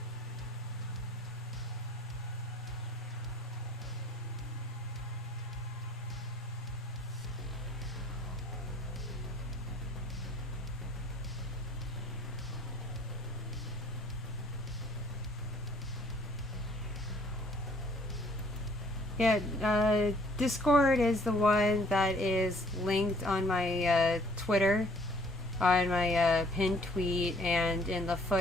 Yeah, Discord is the one that is linked on my Twitter, on my pinned tweet, and in the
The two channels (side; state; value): both; normal; correlation 0.59